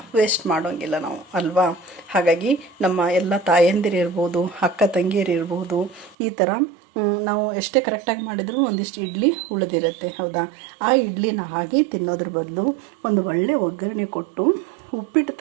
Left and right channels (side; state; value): left; drops out; at 6.2 s